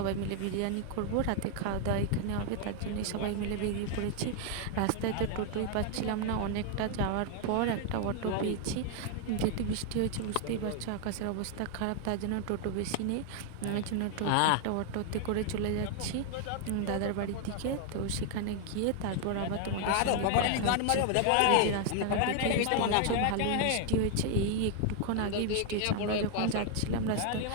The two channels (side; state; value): both; different; correlation 0.00